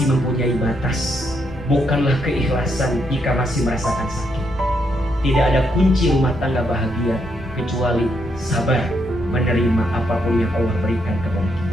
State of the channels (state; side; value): normal; both; correlation 0.77